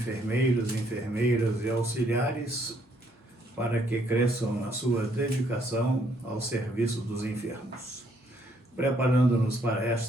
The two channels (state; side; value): normal; both; correlation 0.69